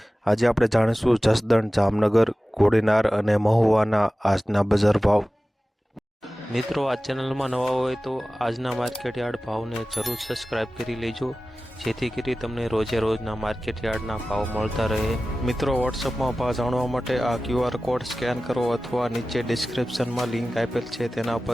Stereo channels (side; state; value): both; normal; correlation 0.96